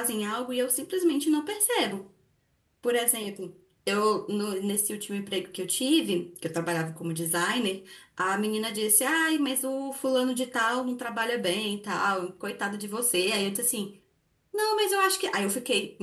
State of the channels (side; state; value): both; identical; correlation 1.00